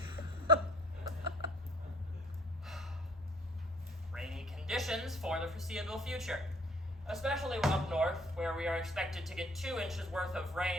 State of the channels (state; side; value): normal; both; correlation 0.57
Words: rainy conditions for the foreseeable future, especially up north, where we are expected to get 2 inches worth of